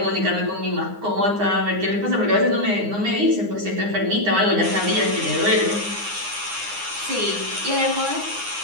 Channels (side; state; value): left; late; 9.7 ms